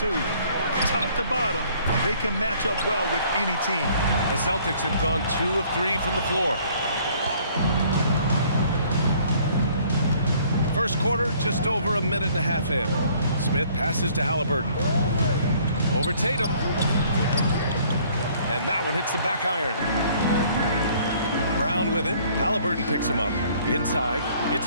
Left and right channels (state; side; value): inverted; both; correlation -0.59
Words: Top to bottom, they can match up well with any team. The Celtics have gone 2 of 3 from the floor. First quarter, just over a minute and a half in. Smith passes to Halliburton. Over Tatum. And that one hits the back iron. Brown with it. Halliburton picks him up. Inside. It's